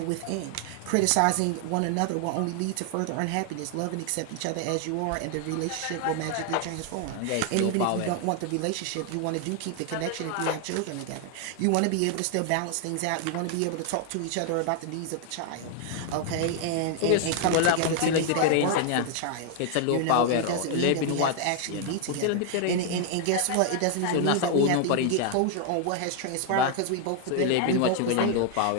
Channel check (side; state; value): both; different; correlation 0.00